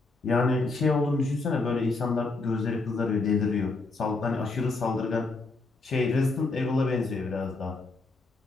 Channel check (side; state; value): right; quieter; 3.5 dB